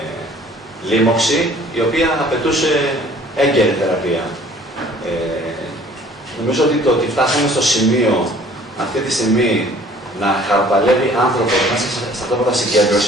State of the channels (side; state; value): both; normal; correlation 0.53